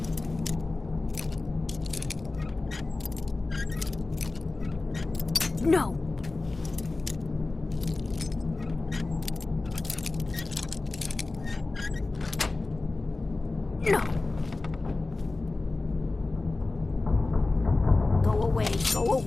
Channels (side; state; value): right; quieter; 3.3 dB